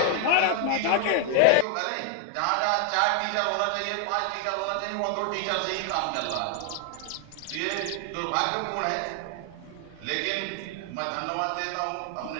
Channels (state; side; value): different; both; correlation 0.00